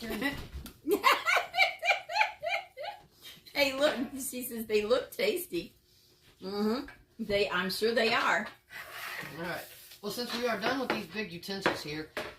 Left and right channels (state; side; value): identical; both; correlation 1.00